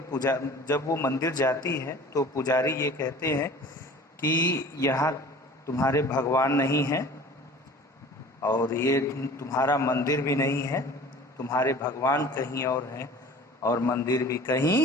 जब वो मंदिर जाती है तो पुजारी ये कहते हैं कि यहाँ तुम्हारे भगवान नहीं हैं और ये तुम्हारा मंदिर भी नहीं है, तुम्हारे भगवान कहीं और हैं और मंदिर भी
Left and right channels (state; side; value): normal; both; correlation 0.44